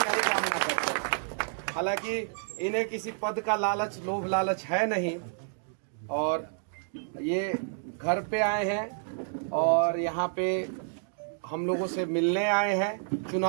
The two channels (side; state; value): left; silent; digital silence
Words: कामना करते हैं। हालांकि इन्हें किसी पद का लालच, लोभ लालच है नहीं, और ये घर पे आए हैं और यहाँ पे हम लोगों से मिलने आए हैं,